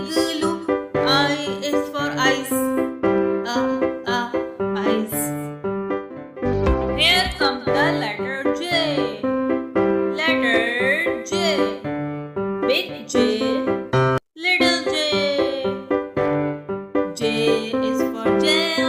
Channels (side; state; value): both; identical; correlation 1.00